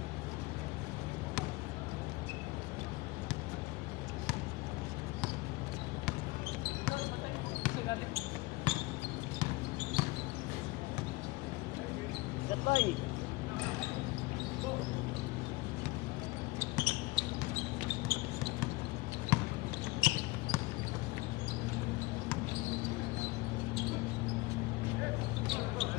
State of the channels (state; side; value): quieter; right; 22.1 dB